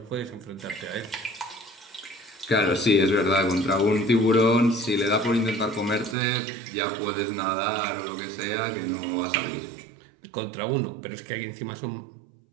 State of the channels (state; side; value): drops out; left; at 6.2 s